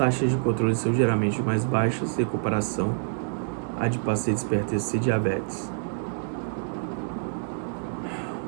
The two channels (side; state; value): left; silent; 60 dB below the other